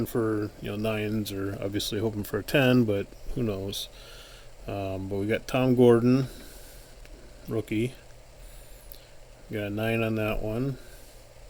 for 9s, or obviously hoping for a 10, but who knows. But we got Tom Gordon, rookie. We got a 9 on that one.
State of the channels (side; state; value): both; identical; correlation 1.00